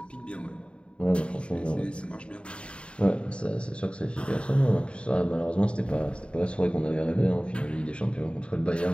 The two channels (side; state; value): right; late; 0.056 ms